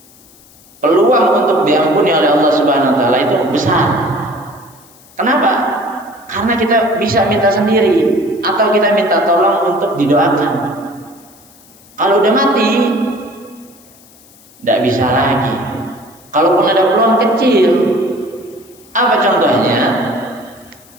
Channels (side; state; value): left; noise; hiss, 26 dB below the sound